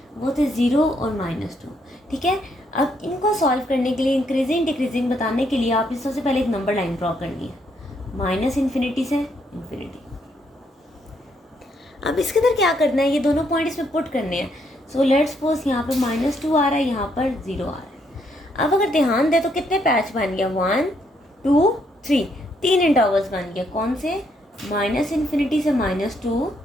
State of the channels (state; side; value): normal; both; correlation 0.73